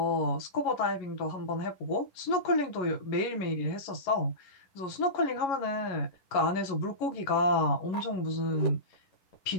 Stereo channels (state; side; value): late; right; 11 ms